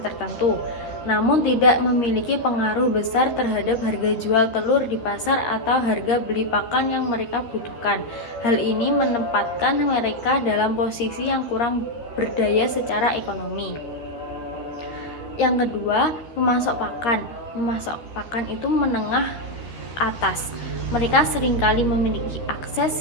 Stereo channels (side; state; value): right; late; 13 ms